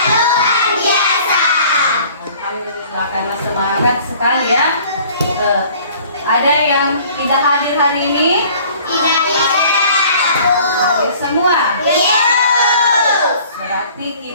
luar biasa. Alhamdulillah, karena semangat sekali ya. Ada yang tidak hadir hari ini? Tidak. Hadir semua. Iya. Berarti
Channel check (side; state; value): both; inverted; correlation -0.52